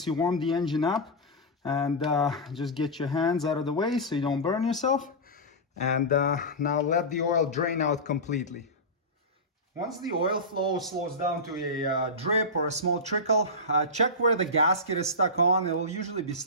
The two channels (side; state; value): both; normal; correlation -0.14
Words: you warmed the engine up, and just get your hands out of the way so you don't burn yourself. And now let the oil drain out completely. Once the oil flow slows down to a drip or a small trickle, check where the gasket is stuck on. It will usually be